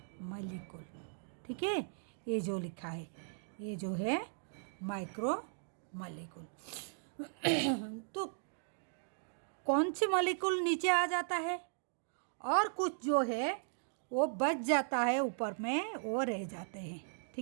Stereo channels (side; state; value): left; silent; digital silence